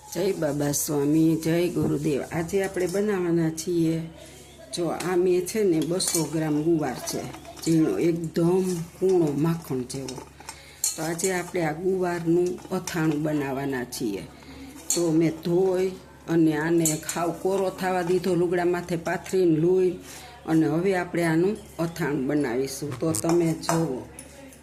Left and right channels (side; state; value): both; identical; correlation 1.00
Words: જય બાબા સ્વામી, જય ગુરુદેવ। આજે આપણે બનાવવાના છીએ, જો આ મેં છે ને 200 ગ્રામ ગુવાર છે, ઝીણો એકદમ કૂણો માખણ જેવો। તો આજે આપણે આ ગુવારનું અથાણું બનાવવાના છીએ। તો મેં ધોઈ અને આને ખાવ કોરો થવા દીધો, લુગડા માથે પાથરીને લૂઈ, અને હવે આપણે આનું અથાણું બનાવીશું। તો તમે જુઓ,